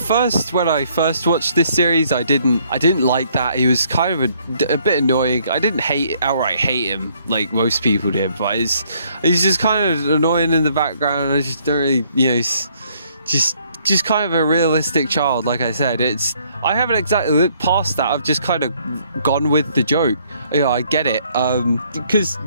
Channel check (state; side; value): inverted; both; correlation -0.66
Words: when I first watched this series, I didn't like that. He was kind of a bit annoying. I didn't outright hate him like most people did, but he's just kind of annoying in the background. I just don't really, he's just kind of a realistic child. Like I said, I haven't exactly looked past that. I've just kind of gone with the joke. Yeah, I get it. Because